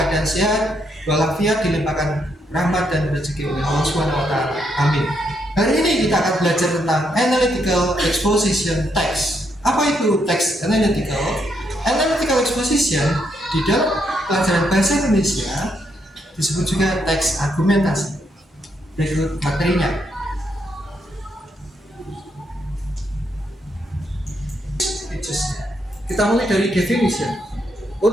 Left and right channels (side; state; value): both; normal; correlation 0.77